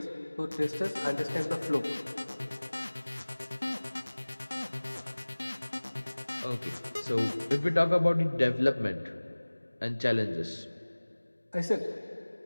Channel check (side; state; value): both; inverted; correlation -1.00